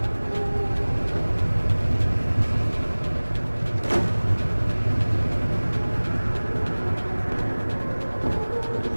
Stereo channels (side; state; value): both; inverted; correlation -1.00